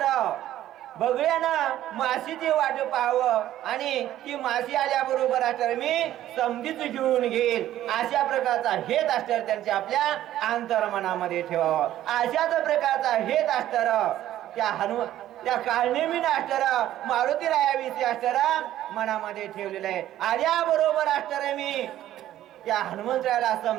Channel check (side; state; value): left; quieter; 13.0 dB